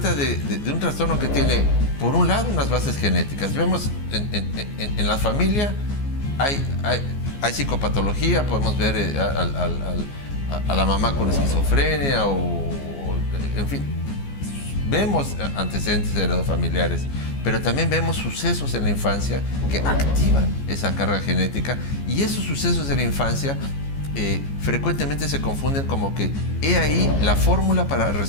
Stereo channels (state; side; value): late; right; 14 ms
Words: de un trastorno que tiene, por un lado, unas bases genéticas. Vemos en la familia hay psicopatología, podemos ver a la mamá con esquizofrenia en fin, vemos antecedentes heredofamiliares, pero también vemos sucesos en la infancia que activan esa carga genética, y esos sucesos de la infancia frecuentemente se confunden como que he ahí la fórmula para